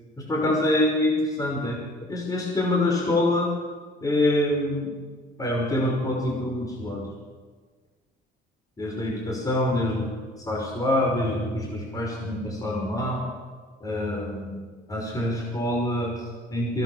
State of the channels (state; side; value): normal; both; correlation 0.53